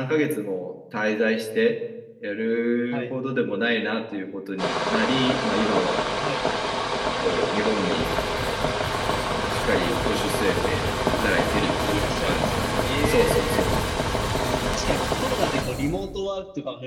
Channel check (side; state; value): both; identical; correlation 1.00